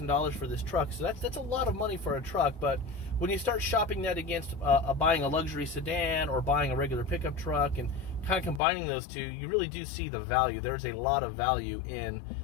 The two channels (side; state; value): right; drops out; at 8.6 s